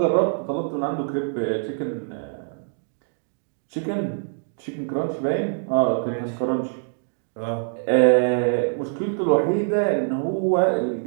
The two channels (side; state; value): left; silent; digital silence